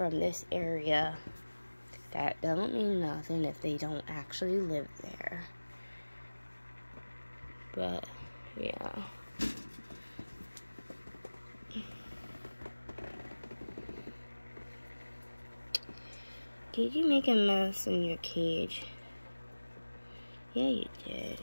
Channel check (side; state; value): both; inverted; correlation -1.00